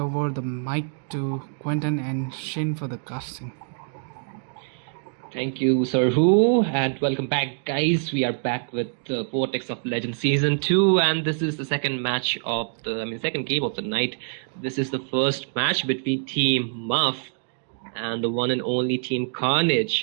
over the mic to Quentin and Shin for the casting. Thank you, Sir Who, and welcome back, guys. We are back with the Vortex of Legend Season 2, and this is the second match of second game of the night. This is the first match between Team Muff and the one and only Team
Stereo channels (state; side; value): silent; left; 62 dB below the other